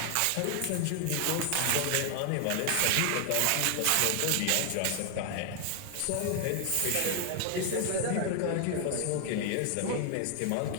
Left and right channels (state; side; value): different; both; correlation 0.00